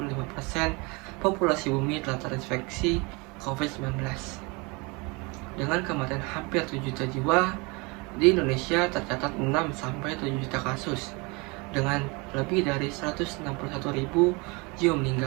populasi bumi telah terinfeksi COVID-19. Dengan kematian hampir 7 juta jiwa Di Indonesia tercatat 6-7 juta kasus dengan lebih dari 161.000 jiwa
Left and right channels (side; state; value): left; quieter; 27.8 dB